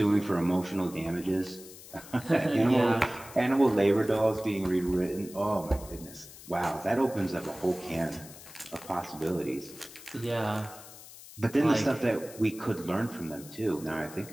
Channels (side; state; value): left; noise; hiss, 17 dB below the sound